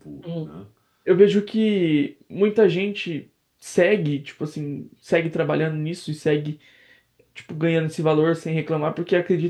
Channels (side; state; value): both; identical; correlation 1.00